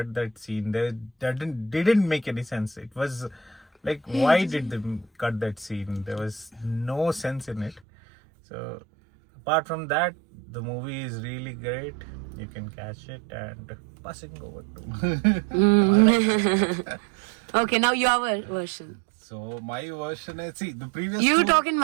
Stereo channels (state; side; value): drops out; left; at 7.8 s